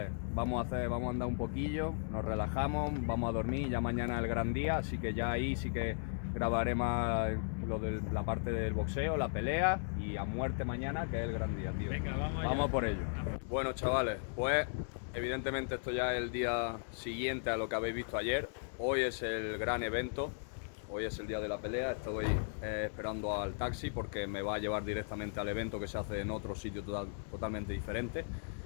vamos a andar un poquillo, nos relajamos, vamos a dormir, ya mañana es el gran día, así que ya ahí sí que grabaré más lo de la parte del boxeo, la pelea, y a muerte mañana, que es el gran día, tío. Venga, vamos por ello. Bueno, chavales, pues evidentemente esto ya es el día siguiente a lo que habéis visto ayer. Hoy es el gran evento, hoy es el día de la pelea. Estoy esperando al taxi porque me va a llevar directamente al evento, que se hace en otro sitio totalmente diferente.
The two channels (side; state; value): right; silent; digital silence